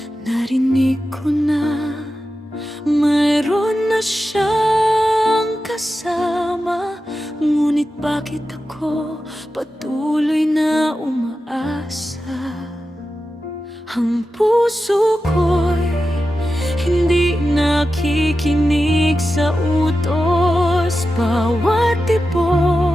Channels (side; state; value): both; normal; correlation 0.92